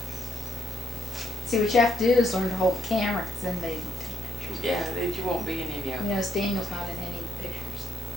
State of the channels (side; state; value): both; normal; correlation 0.76